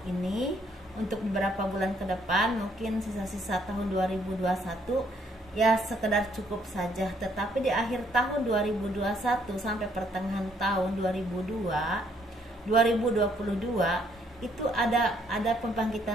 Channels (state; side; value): normal; both; correlation 0.68